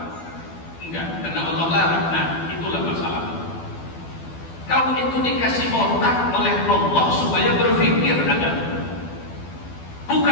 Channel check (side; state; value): right; late; 12 ms